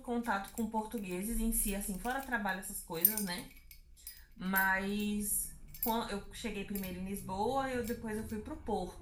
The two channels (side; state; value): both; identical; correlation 1.00